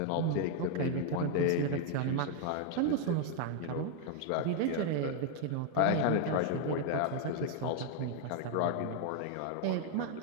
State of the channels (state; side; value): different; both; correlation 0.00